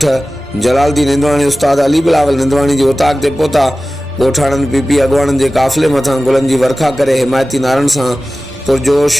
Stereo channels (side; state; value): both; normal; correlation 0.96